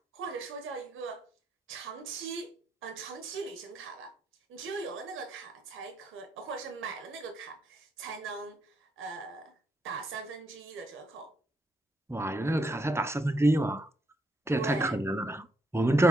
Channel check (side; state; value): both; normal; correlation 0.77